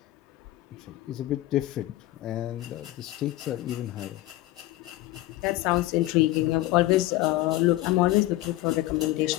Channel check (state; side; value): quieter; right; 16.9 dB